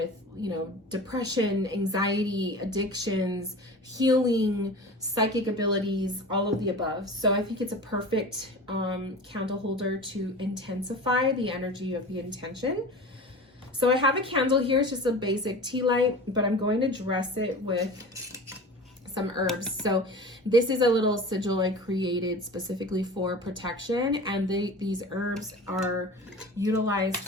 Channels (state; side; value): normal; both; correlation 0.36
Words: depression, anxiety, addictions, healing, psychic abilities, all of the above. So I think it's a perfect candle holder to intensify the energy of the intention. So I have a candle here. It's just a basic tea light, but I'm going to dress it with some herbs. So this is a little sigil I created specifically for protection, and these herbs are utilized